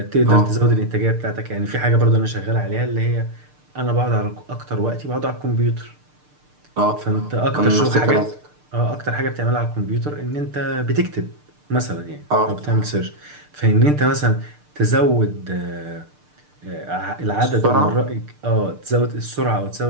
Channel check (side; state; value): left; late; 6.7 ms